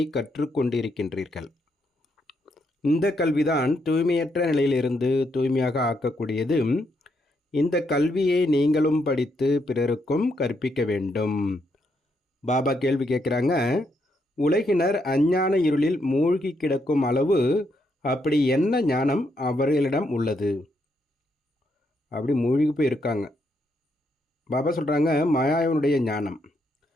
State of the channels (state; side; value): normal; both; correlation 0.77